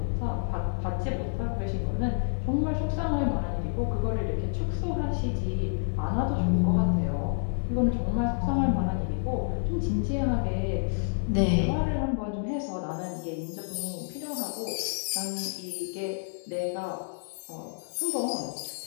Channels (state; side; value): silent; right; digital silence